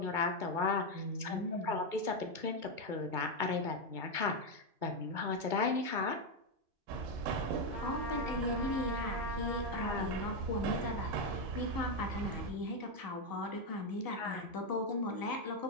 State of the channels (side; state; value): left; late; 2.2 ms